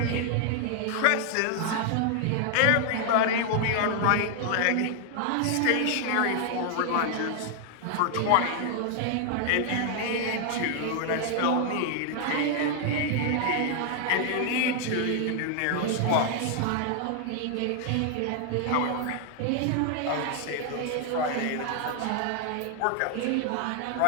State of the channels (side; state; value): both; different; correlation 0.00